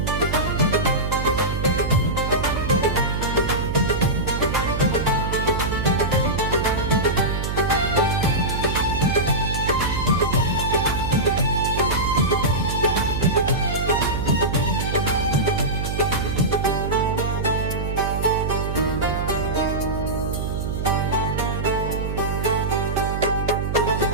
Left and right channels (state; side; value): noise; right; hum, 3 dB below the sound